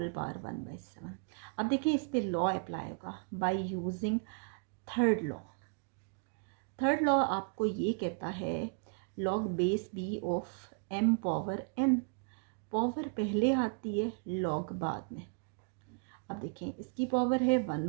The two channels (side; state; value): left; quieter; 39.8 dB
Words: पावर 1/7। अब देखिए इस पे लॉ अप्लाई होगा by using third law. Third law आपको ये कहता है log base B of m power n, power पहले आती है लॉग बाद में। अब देखें इसकी पावर है